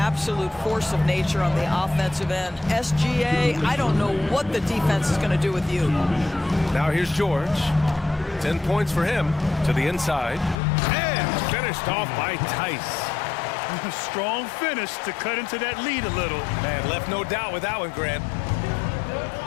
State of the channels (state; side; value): drops out; right; at 10.6 s